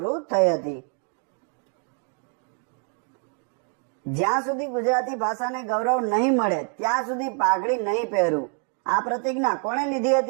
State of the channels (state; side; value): quieter; left; 38.0 dB